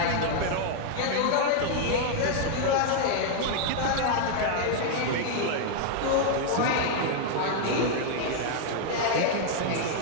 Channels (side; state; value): both; different; correlation 0.00